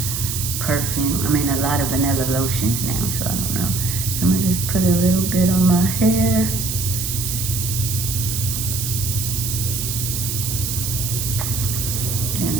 perfume. I mean, a lot of vanilla lotions now, so I don't know. So I'm gonna just put a little bit on my hair. And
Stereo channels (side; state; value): right; noise; hiss, 3 dB below the sound